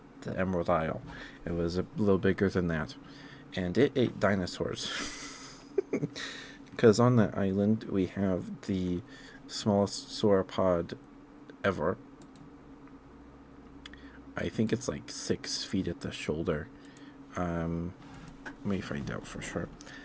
the Emerald Isle. It was a little bigger than that, and it ate dinosaurs. Because on that island we have the smallest sauropod ever. I think it's like 6 feet at the shoulder. Let me find out for sure.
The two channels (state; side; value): identical; both; correlation 1.00